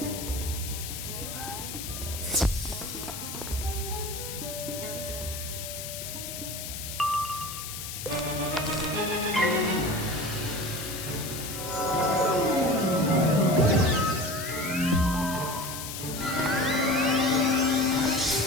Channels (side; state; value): left; noise; hiss, 7 dB below the sound